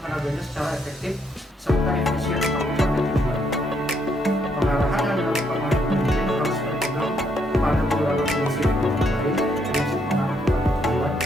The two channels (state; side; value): normal; both; correlation 0.74